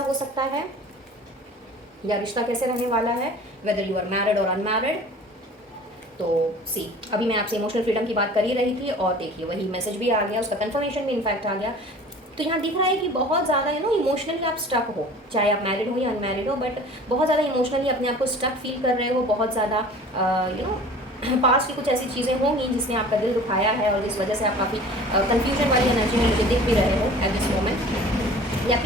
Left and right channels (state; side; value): normal; both; correlation 0.44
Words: हो सकता है या रिश्ता कैसे रहने वाला है, वेदर यू आर मैरिड और अनमैरिड. तो सी, अभी मैं आपसे इमोशनल फ्रीडम की बात कर ही रही थी, और देखिए वही मैसेज भी आ गया, उसका कंफर्मेशन भी इनफैक्ट आ गया. तो यहाँ दिख रहा है कि बहुत ज़्यादा इमोशनली आप स्टक हो, चाहे आप मैरिड हो या अनमैरिड हो, बट बहुत ज़्यादा इमोशनली अपने आप को स्टक फील कर रहे हो. बहुत ज़्यादा पास्ट की कुछ ऐसी चीज़ें होंगी जिसने आपका दिल दुखाया है, और जिस वजह से आप काफ़ी कन्फ्यूजन वाली एनर्जी में मुझे दिख भी रहे हो एट दिस मोमेंट. ये